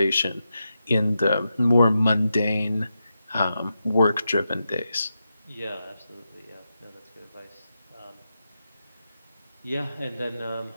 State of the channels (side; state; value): both; inverted; correlation -0.88